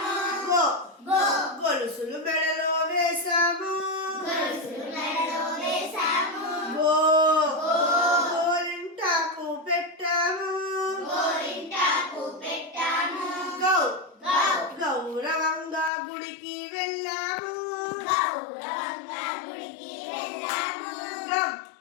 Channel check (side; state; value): right; drops out; at 15.9 s